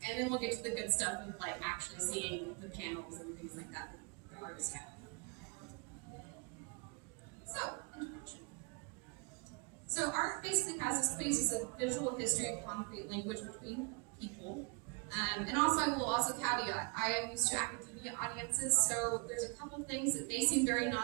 and then we'll get to the good stuff of like actually seeing the panels and things like that the artists have. So, introduction. So art basically has this basis of visual history and concrete language between people. And also, I will also caveat, I am used to academia audiences, so there's a couple things that may seem very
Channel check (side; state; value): left; quieter; 32.4 dB